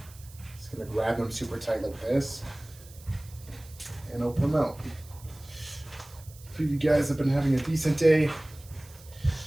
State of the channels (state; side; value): noise; right; hiss, 22 dB below the sound